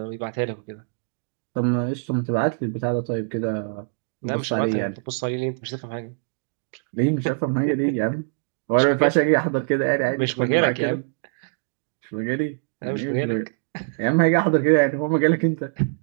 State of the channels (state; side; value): silent; left; digital silence